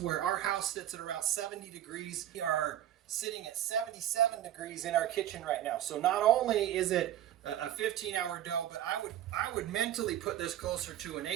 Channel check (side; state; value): left; quieter; 12.1 dB